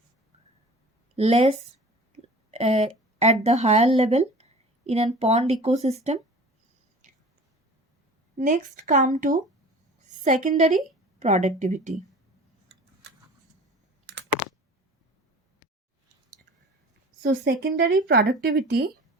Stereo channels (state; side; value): normal; both; correlation 0.42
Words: less at the higher level in a pond ecosystem. Next come to secondary productivity. So secondary productivity